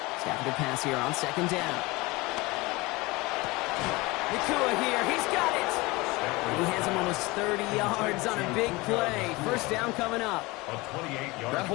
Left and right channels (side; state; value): right; quieter; 22.9 dB